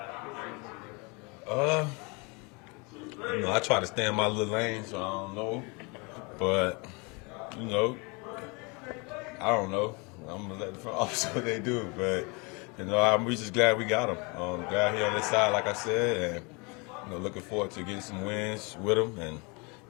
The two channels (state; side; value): quieter; right; 29.8 dB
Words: during the season? I try to stay in my little lane, so I don't know. But, I don't know. I'm going to let the front office do what they do. But, I'm just glad we got him. Glad he on this side, like I said, and, looking forward to getting some wins with him and,